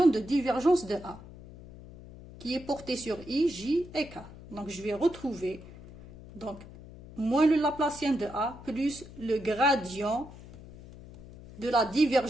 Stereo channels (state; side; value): noise; left; hum, 17 dB below the sound